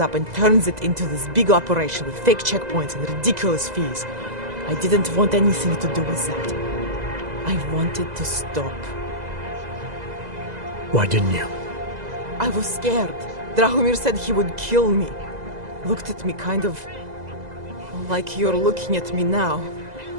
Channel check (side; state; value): left; late; 2.0 ms